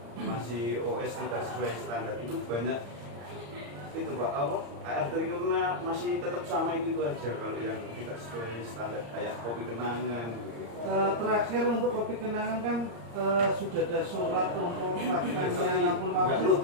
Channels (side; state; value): left; late; 34 ms